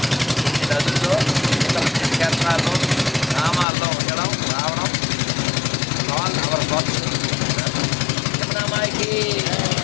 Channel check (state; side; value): drops out; right; at 3.7 s